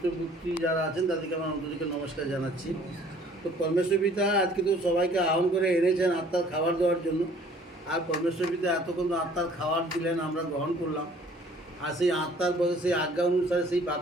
যারা আছেন তাদেরকে আমার অন্তরিকে নমস্কার জানাচ্ছি। তো পরমেশ্বর পিতা আজকে তো সবাইকে আহ্বান করে এনেছেন আত্মার খাবার দেওয়ার জন্য। আর পরমেশ্বর পিতা এতক্ষণ আত্মার খাবার দিলেন, আমরা গ্রহণ করলাম। আর সেই আত্মার বলে সেই আজ্ঞা অনুসারে, সেই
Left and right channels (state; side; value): normal; both; correlation 0.55